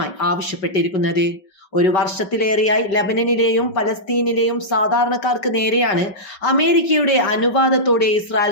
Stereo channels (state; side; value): late; right; 5.3 ms